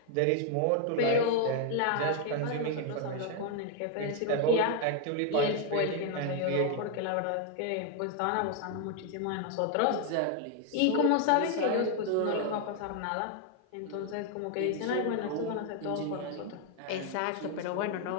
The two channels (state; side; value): different; both; correlation 0.01